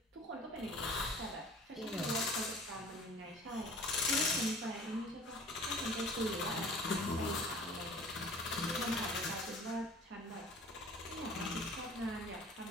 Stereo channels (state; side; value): normal; both; correlation 0.47